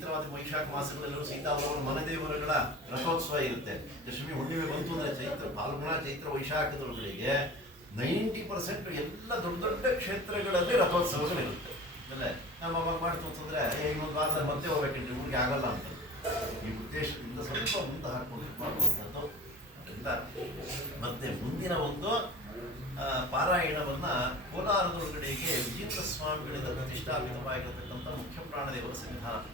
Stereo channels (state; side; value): normal; both; correlation 0.36